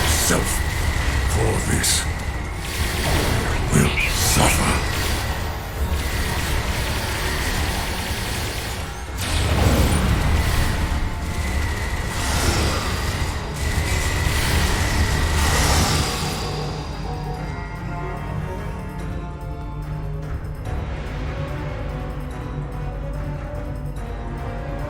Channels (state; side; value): identical; both; correlation 1.00